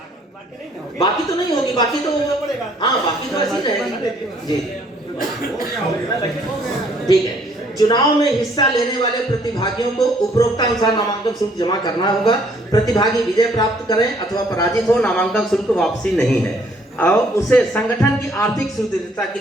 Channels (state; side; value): normal; both; correlation 0.63